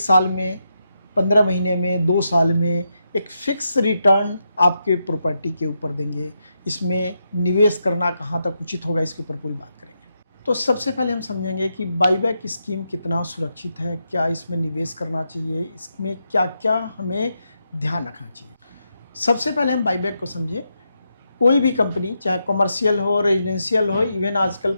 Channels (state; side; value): inverted; both; correlation -0.84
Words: में, 15 महीने में, 2 साल में एक फिक्स रिटर्न आपके प्रॉपर्टी के ऊपर देंगे। इसमें निवेश करना कहाँ तक उचित होगा, इसके ऊपर पूरी बात करेंगे। तो सबसे पहले हम समझेंगे कि बाईबैक स्कीम कितना सुरक्षित है, क्या इसमें निवेश करना चाहिए, इसमें क्या क्या हमें ध्यान रखना चाहिए। सबसे पहले हम बाईबैक को समझें। कोई भी कंपनी, चाहे कमर्शियल हो, रेजिडेंशियल हो, इवन आजकल